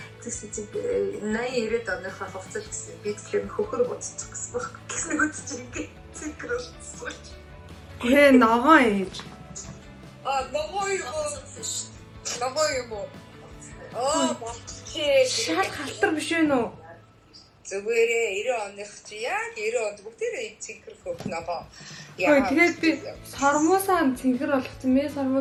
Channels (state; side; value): identical; both; correlation 1.00